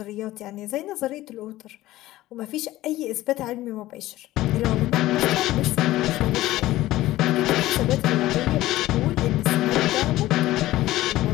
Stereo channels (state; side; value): quieter; right; 16.2 dB